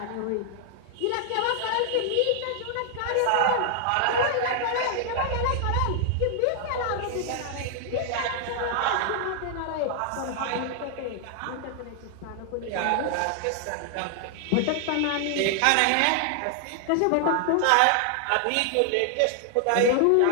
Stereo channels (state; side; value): different; both; correlation 0.00